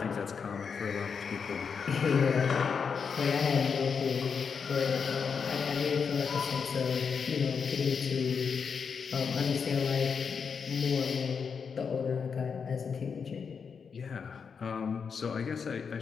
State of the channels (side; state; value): right; quieter; 6.1 dB